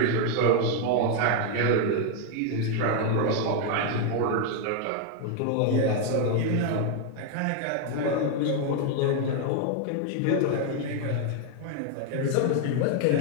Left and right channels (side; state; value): both; different; correlation 0.01